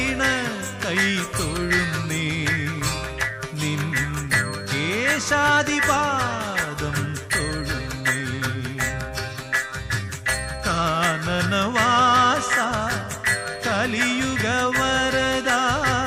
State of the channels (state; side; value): identical; both; correlation 1.00